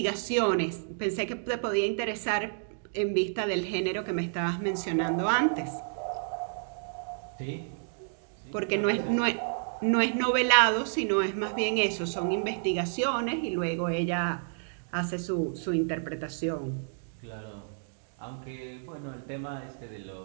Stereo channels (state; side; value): silent; left; digital silence